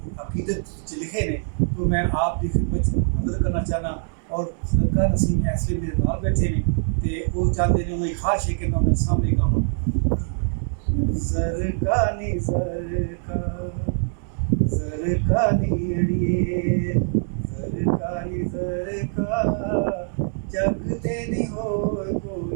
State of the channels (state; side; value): silent; left; 62 dB below the other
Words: अकीदत लिखे ने तो मैं आप की खिदमत हाज़िर करना चाहना और ज़रका नसीम ऐसे मेरे नाल बैठे ने तो वो चाहते हैं उन्हें ख्वाहिश है कि मैं उन्हें सामने गावां। ज़रका नी ज़रका ज़रका नी अड़िए ज़रका नी ज़रका जग ते नहीं होर